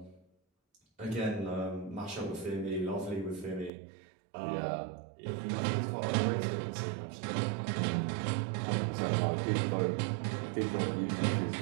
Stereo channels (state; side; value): drops out; left; at 3.7 s